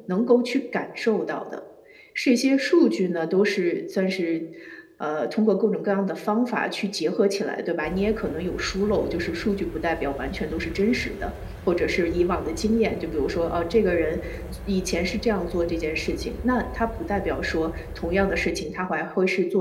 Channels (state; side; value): identical; both; correlation 1.00